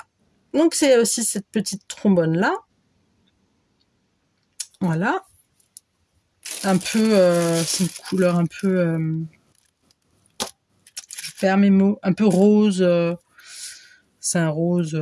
Donc, c'est aussi cette petite trombone-là. Voilà. Un peu... c'est une couleur un peu... je perds mes mots. Un peu rose. C'est un rose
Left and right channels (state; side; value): identical; both; correlation 1.00